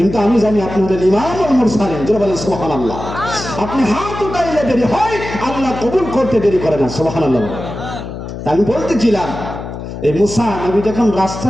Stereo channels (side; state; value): left; noise; hum, 9 dB below the sound